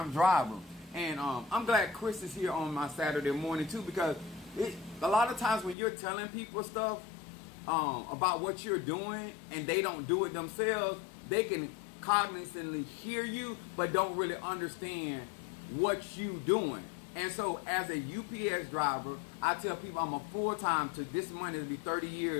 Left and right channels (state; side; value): drops out; right; at 5.8 s